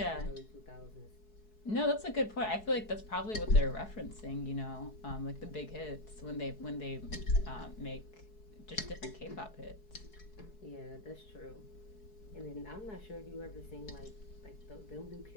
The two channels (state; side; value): late; right; 4.7 ms